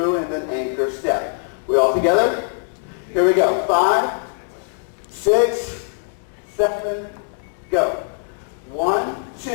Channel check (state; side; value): silent; right; digital silence